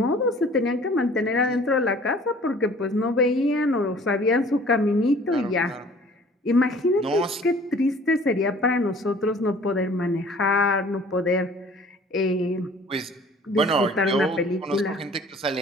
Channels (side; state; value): both; normal; correlation 0.51